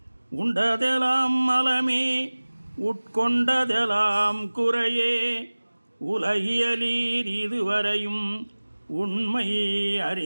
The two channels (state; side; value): inverted; both; correlation -1.00